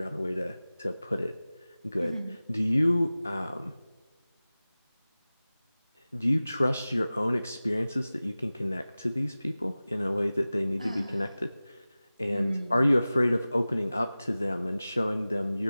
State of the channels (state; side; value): inverted; both; correlation -0.97